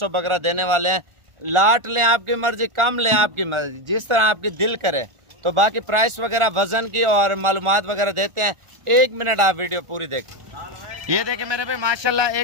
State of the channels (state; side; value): late; left; 1.4 ms